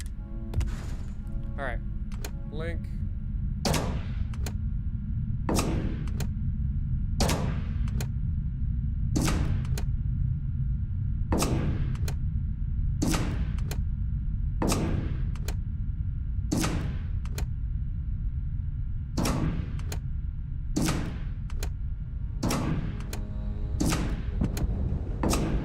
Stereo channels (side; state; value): both; identical; correlation 1.00